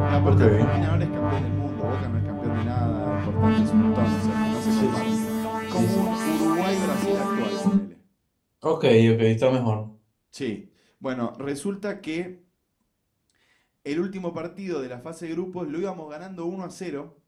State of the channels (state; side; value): identical; both; correlation 1.00